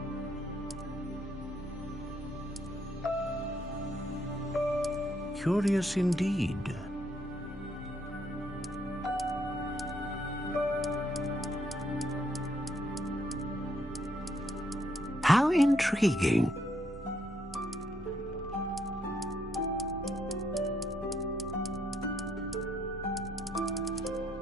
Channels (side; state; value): both; normal; correlation 0.73